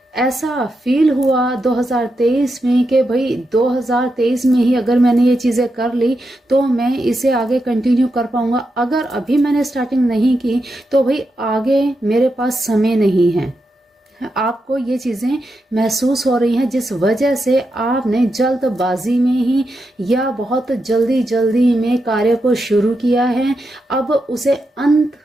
ऐसा फील हुआ 2023 में कि भाई 2023 में ही अगर मैंने ये चीज़ें कर ली तो मैं इसे आगे कंटिन्यू कर पाऊंगा, अगर अभी मैंने स्टार्टिंग नहीं की तो भाई आगे मेरे पास समय नहीं है। आपको ये चीज़ें महसूस हो रही हैं जिस वजह से आपने जल्दबाजी में ही या बहुत जल्दी में कार्य को शुरू किया है। अब उसे अंत,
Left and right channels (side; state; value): both; normal; correlation 0.86